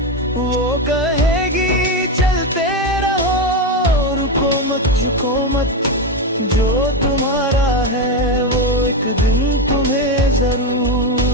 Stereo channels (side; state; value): both; normal; correlation 0.11